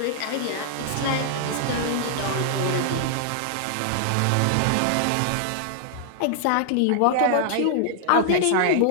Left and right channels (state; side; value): different; both; correlation -0.01